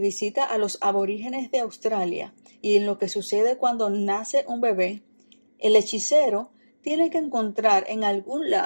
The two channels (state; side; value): inverted; both; correlation -1.00